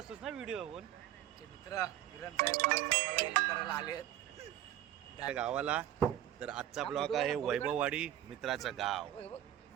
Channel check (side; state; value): left; quieter; 12.3 dB